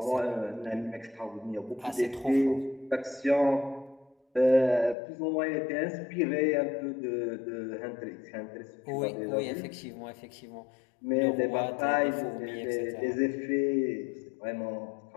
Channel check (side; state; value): right; drops out; at 5.0 s